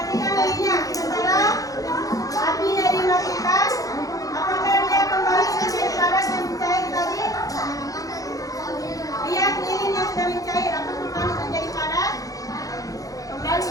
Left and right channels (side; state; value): right; late; 0.17 ms